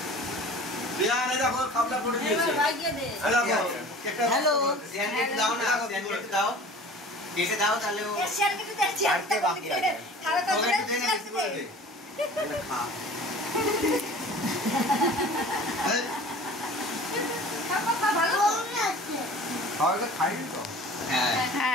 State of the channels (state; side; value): normal; both; correlation 0.43